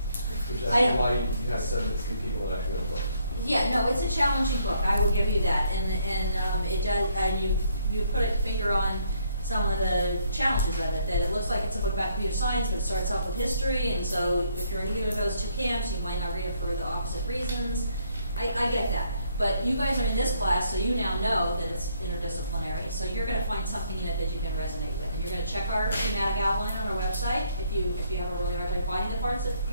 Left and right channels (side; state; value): both; inverted; correlation -0.69